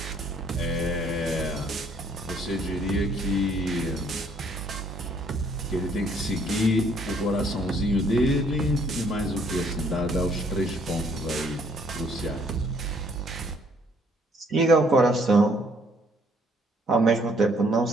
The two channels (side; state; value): both; normal; correlation 0.64